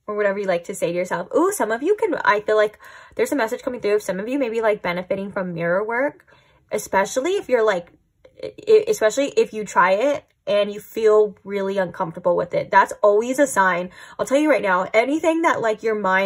Or whatever you like to say to yourself. Ooh, some of you I feel like there's a message coming through. Some of you may be like benefiting from mirror work, especially if you're like, especially if you try it and you feel really uncomfortable with it. That's always a sign. I'll tell you right now, anything that like your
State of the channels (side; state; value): both; identical; correlation 1.00